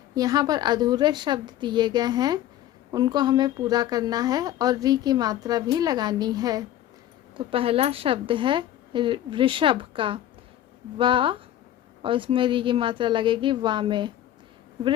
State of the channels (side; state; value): right; quieter; 12.4 dB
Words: यहाँ पर अधूरे शब्द दिए गए हैं, उनको हमें पूरा करना है और री की मात्रा भी लगानी है। तो पहला शब्द है वृषभ का, वा, और इसमें री की मात्रा लगेगी वा में।